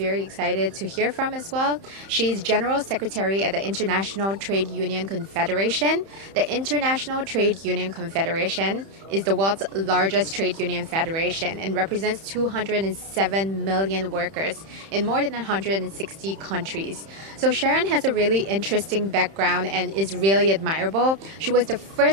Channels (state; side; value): late; left; 31 ms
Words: excited to hear from as well. She's General Secretary at the International Trade Union Confederation. The International Trade Union Confederation is the world's largest trade union federation and represents 207 million workers in more than 160 countries. So Sharon has a really interesting background and is really admirable. She was the